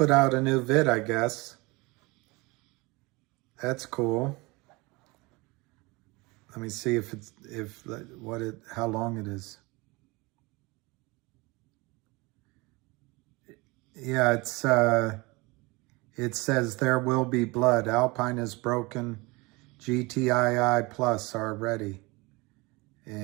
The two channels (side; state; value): left; quieter; 24.6 dB